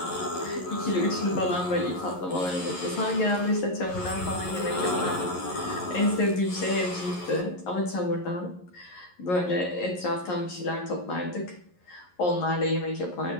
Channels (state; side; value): late; right; 11 ms